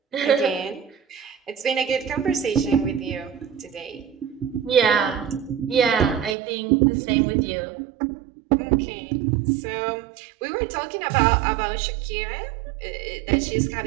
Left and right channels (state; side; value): drops out; left; at 6.4 s